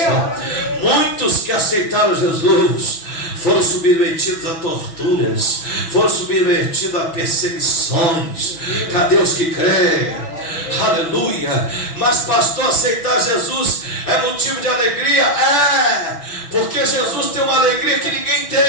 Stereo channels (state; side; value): late; right; 6.0 ms